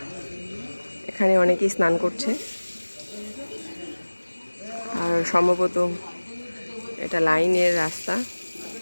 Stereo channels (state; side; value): inverted; both; correlation -1.00